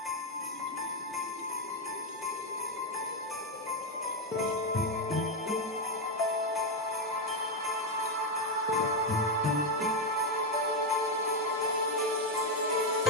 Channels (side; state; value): both; normal; correlation 0.05